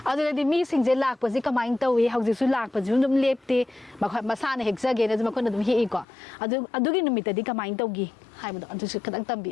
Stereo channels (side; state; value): right; drops out; at 6.1 s